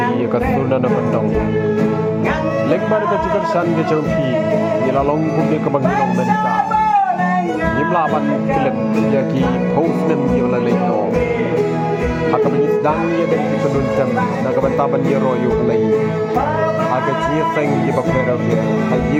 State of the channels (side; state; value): both; identical; correlation 1.00